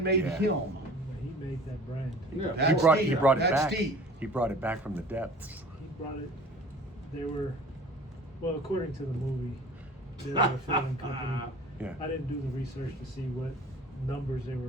made Yeah. him? He made that brand. Yeah. That's He deep. brought it That's back. deep. He brought it back from the depths. He brought it. They were, well, according to the movie, they were a filming company. Yeah. I didn't do the research to see what numbers they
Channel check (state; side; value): normal; both; correlation 0.45